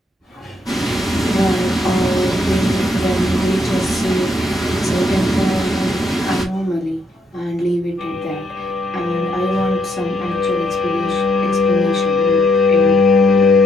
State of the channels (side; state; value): both; normal; correlation 0.74